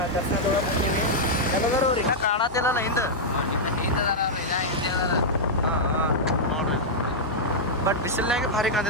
ದರ್ಶನ ತೊಗೊಳಕ್ಕೆ ಹೊಂಟೀವಿ. ಎಲ್ಲದರ ಅವ್ರು ಇನ್ನೂ ಕಾಣತ್ತಿಲ್ಲಲ್ಲ ಹಿಂದೆ. ಹಾಂ ಹಾಂ ನೋಡ್ರಿ, ಬಟ್ ಬಿಸಿಲ್ನಾಗೆ ಭಾರಿ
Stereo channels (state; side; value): normal; both; correlation -0.07